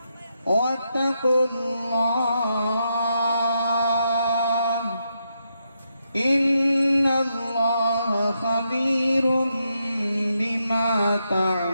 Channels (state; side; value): inverted; both; correlation -0.82